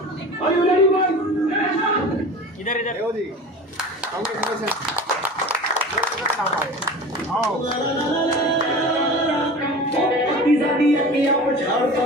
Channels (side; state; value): both; normal; correlation 0.36